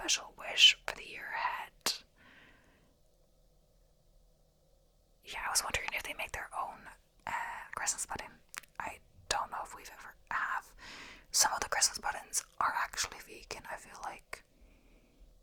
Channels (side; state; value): both; identical; correlation 1.00